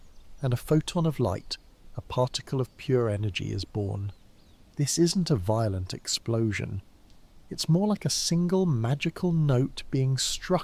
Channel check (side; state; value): both; identical; correlation 1.00